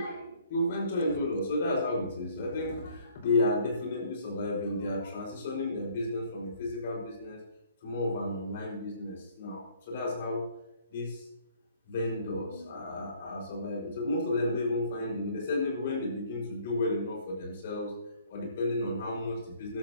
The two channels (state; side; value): inverted; both; correlation -0.59